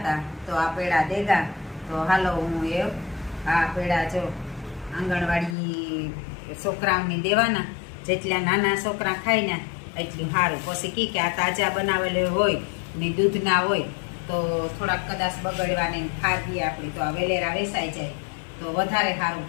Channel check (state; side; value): drops out; right; at 5.6 s